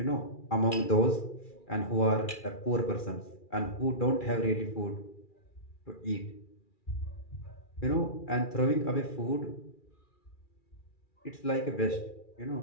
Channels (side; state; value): right; late; 2.4 ms